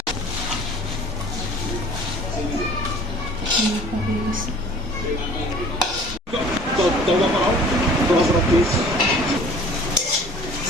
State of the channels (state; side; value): normal; both; correlation 0.49